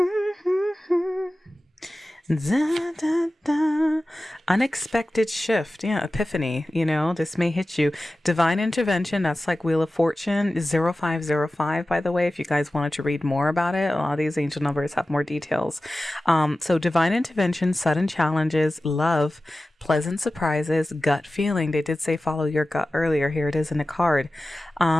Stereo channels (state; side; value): normal; both; correlation 0.95